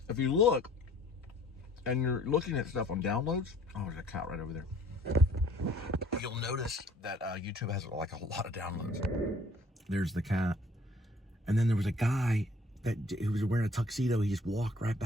If you look, and you're looking at stuff on downloads, oh, there's a cat right over there. You'll notice that YouTube has like a lot of downloads. There's the cat. And then there was a guy who was wearing a tuxedo. He just walked right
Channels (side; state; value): both; normal; correlation 0.55